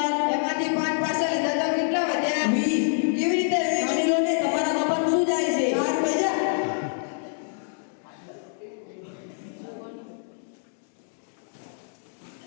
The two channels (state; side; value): silent; right; digital silence